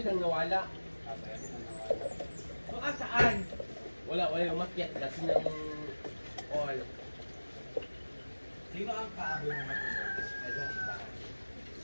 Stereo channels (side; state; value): both; inverted; correlation -1.00